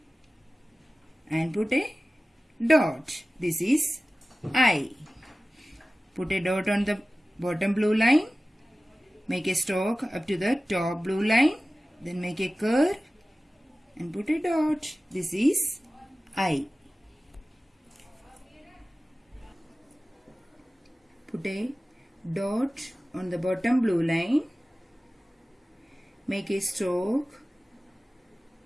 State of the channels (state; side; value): normal; both; correlation 0.96